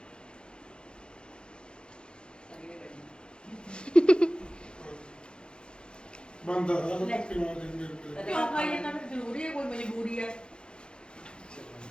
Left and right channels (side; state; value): right; late; 0.051 ms